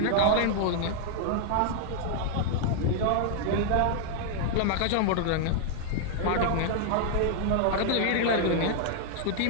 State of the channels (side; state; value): both; different; correlation 0.00